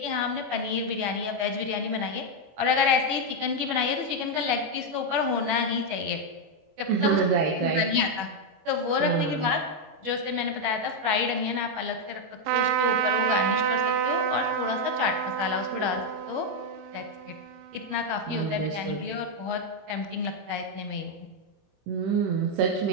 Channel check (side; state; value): left; late; 21 ms